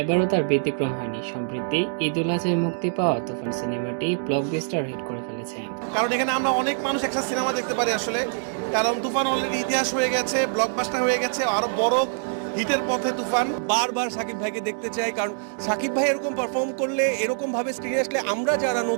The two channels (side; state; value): left; silent; digital silence